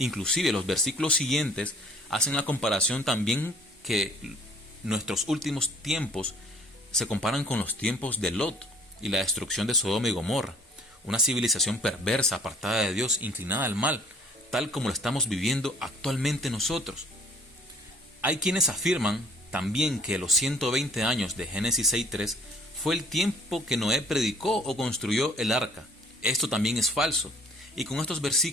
los versículos siguientes hacen la comparación también que nuestros últimos tiempos se comparan con los tiempos de Lot y la destrucción de Sodoma y Gomorra, una civilización perversa, apartada de Dios, inclinada al mal, tal como lo estamos viviendo actualmente nosotros. Hay quienes afirman también que los 120 años de Génesis 6:3 fue el tiempo que Noé predicó o construyó el arca. Esto también es falso, y con estos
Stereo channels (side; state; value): both; normal; correlation 0.55